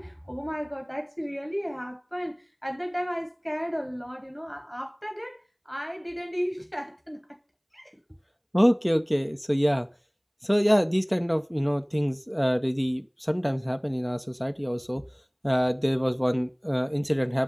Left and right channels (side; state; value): both; identical; correlation 1.00